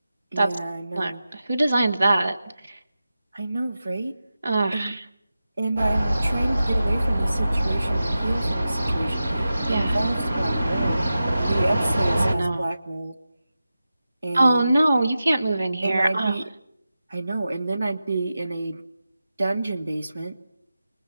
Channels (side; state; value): both; inverted; correlation -0.93